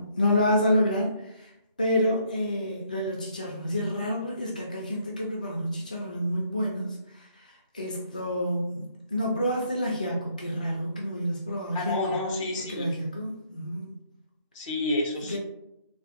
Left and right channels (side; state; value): both; inverted; correlation -0.68